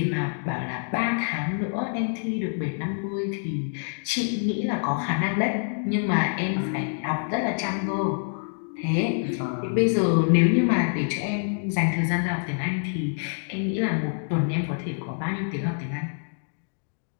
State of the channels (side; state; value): right; silent; digital silence